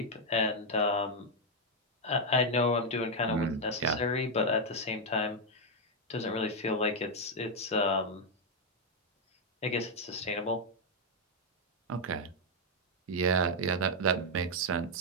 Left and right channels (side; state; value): both; normal; correlation 0.00